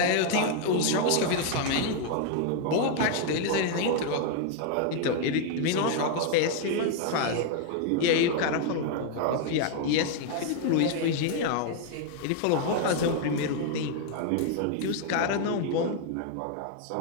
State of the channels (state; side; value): different; both; correlation 0.00